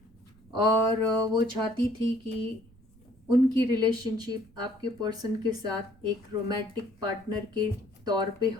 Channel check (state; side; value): noise; right; rumble, 28 dB below the sound